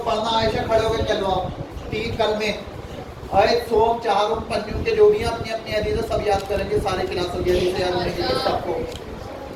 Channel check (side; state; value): both; identical; correlation 1.00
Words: پڑھنا عائشہ کھڑے ہو کے چلو آپ 3 کلمے آیت سوم چہارم پنجم کے جو بھی اپنی اپنی حدیثیں سب یاد کریں گے سارے کلاسوں کی حدیثیں یاد ہونے کے لیے سب کو